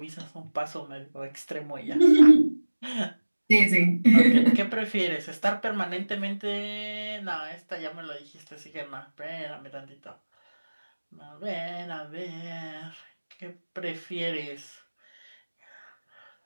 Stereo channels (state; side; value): inverted; both; correlation -1.00